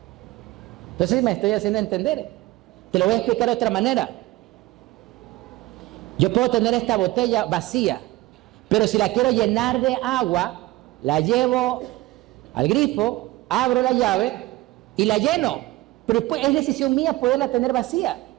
Entonces me estoy haciendo entender. Te lo voy a explicar de otra manera. Yo puedo tener esta botella vacía, pero si la quiero llenar de agua, la llevo al grifo, abro la llave y la lleno. Pero después es decisión mía poderla tener vacía.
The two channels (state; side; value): quieter; left; 18.4 dB